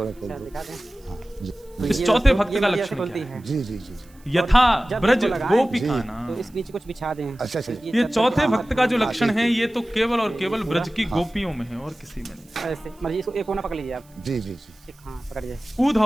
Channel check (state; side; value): noise; right; hiss, 29 dB below the sound